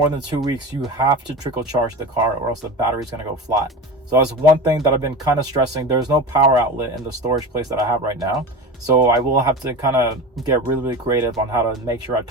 than 2 weeks, you have to trickle charge the car or else the battery's going to go flat. So that's one thing that I've been kind of stressing. There's no power outlet in the storage place that I have right now. So I will have to kind of get really creative on how to make sure I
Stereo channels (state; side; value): normal; both; correlation 0.29